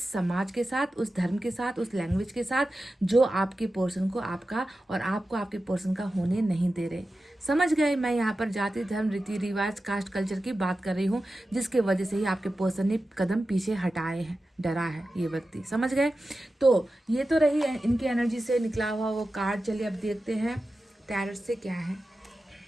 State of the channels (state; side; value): normal; both; correlation 0.93